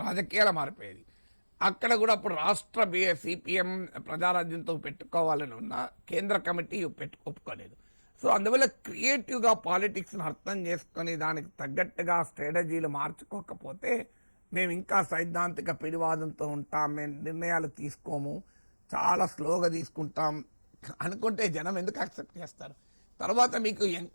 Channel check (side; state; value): both; inverted; correlation -1.00